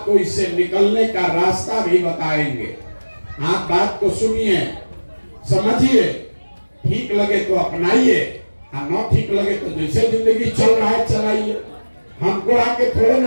इससे निकलने का रास्ता भी बताएंगे। आप बात को सुनिए, समझिए, ठीक लगे तो अपनाइए, और न ठीक लगे तो जैसे जिंदगी चल रहा है चलाइए। हमको आके थोड़े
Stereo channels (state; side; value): inverted; both; correlation -1.00